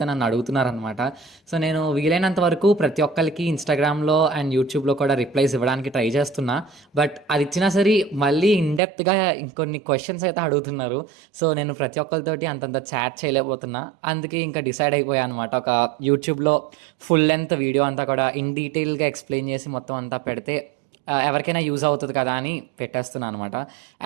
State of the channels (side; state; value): left; drops out; at 8.8 s